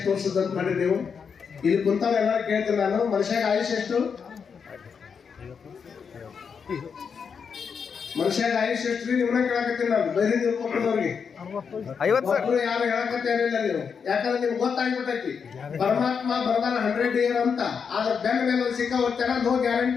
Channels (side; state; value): right; quieter; 6.3 dB